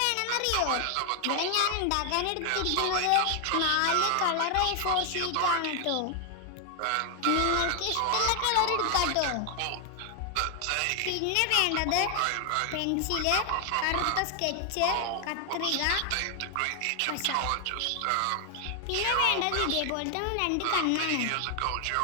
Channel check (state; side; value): different; both; correlation 0.00